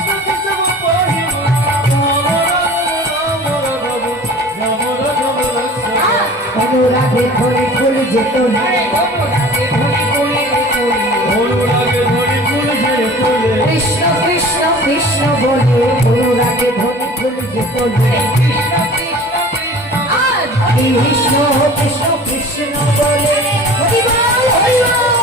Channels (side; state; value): both; normal; correlation 0.43